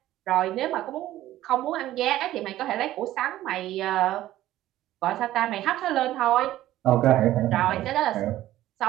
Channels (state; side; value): quieter; left; 14.4 dB